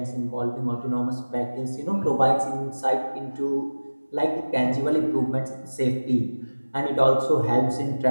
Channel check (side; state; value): both; inverted; correlation -1.00